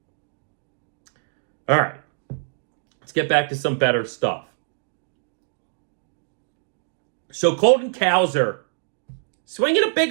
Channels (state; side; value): silent; left; 62 dB below the other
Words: All right. Let's get back to some better stuff. So Colton Cowser, swinging a